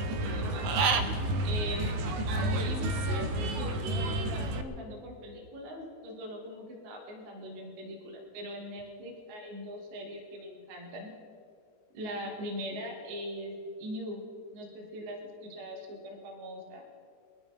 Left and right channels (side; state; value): left; late; 19 ms